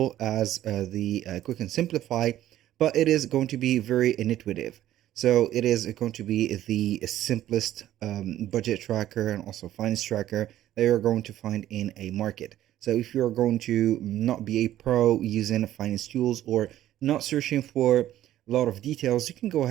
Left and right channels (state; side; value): quieter; left; 13.0 dB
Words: as the Quick and Simplify, but it is going to be very intuitive. So it is going to be the simplest budget tracker and also finance tracker that you're going to find in a market. So if you're going to not be a pro using finance tools or not searching for a lot of details, you can go